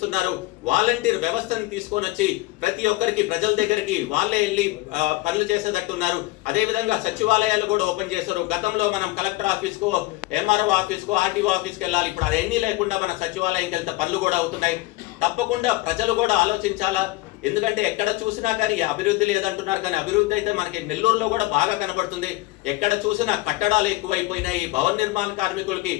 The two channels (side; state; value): right; quieter; 20.0 dB